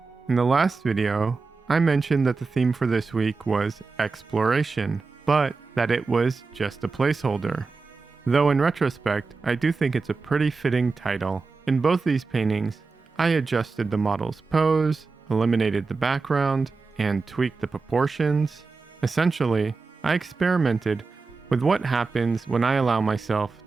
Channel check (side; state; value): left; quieter; 4.3 dB